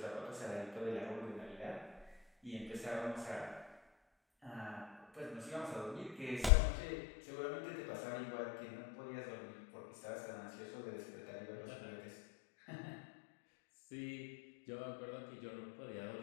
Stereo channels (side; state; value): right; drops out; at 6.5 s